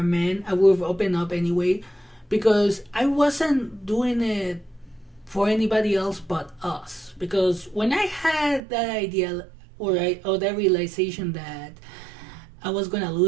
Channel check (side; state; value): left; drops out; at 8.6 s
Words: man. I would have opened up anyway, because I wasn't doing it for anybody else but us. Because when I had that idea or that realization that I was gonna